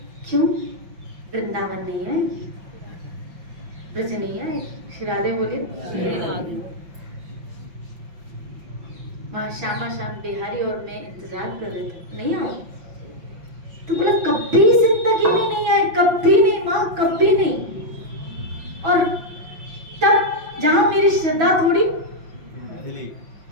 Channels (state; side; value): late; left; 5.7 ms